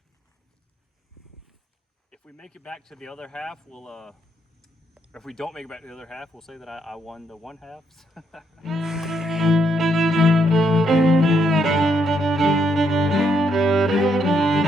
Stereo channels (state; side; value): normal; both; correlation 0.75